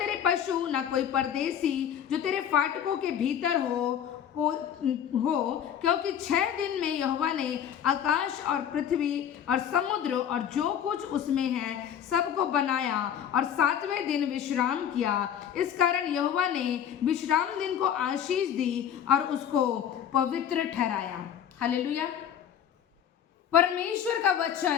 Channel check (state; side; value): quieter; right; 9.2 dB